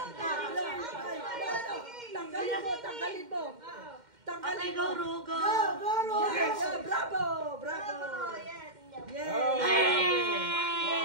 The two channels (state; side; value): late; left; 2.1 ms